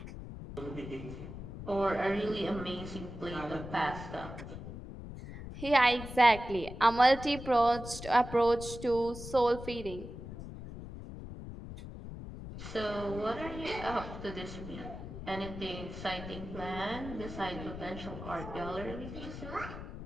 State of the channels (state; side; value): noise; left; rumble, 10 dB below the sound